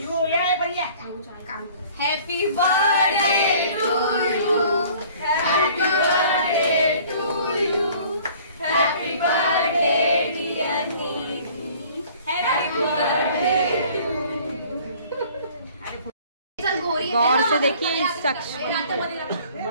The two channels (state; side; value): inverted; both; correlation -0.52